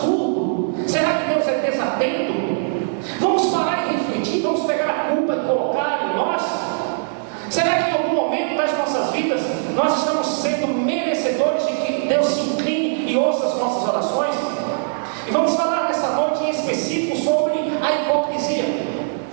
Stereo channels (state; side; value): silent; left; digital silence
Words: Será que Deus é desatento? Vamos parar e refletir, vamos pegar a culpa e colocar em nós? Será que em algum momento das nossas vidas nós estamos sendo merecedores de que Deus se incline e ouça as nossas orações? E vamos falar nessa noite em específico sobre a hipocrisia.